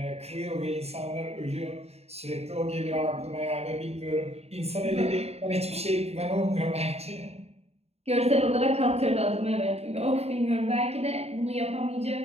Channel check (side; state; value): left; late; 0.30 ms